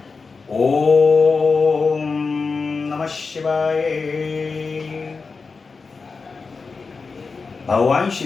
ओम नमः शिवाय। भगवान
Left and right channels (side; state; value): right; quieter; 4.6 dB